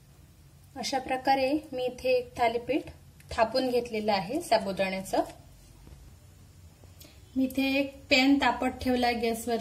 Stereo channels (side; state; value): both; identical; correlation 1.00